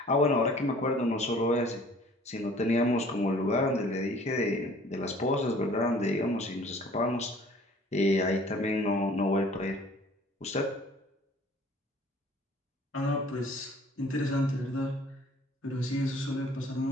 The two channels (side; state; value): both; normal; correlation 0.52